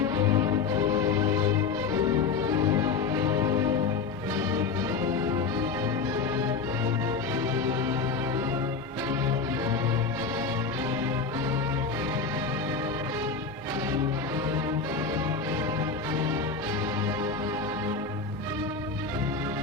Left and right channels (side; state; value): right; quieter; 5.0 dB